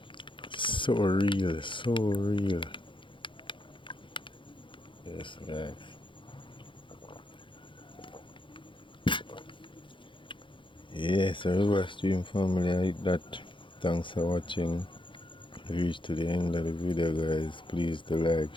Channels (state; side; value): late; right; 0.24 ms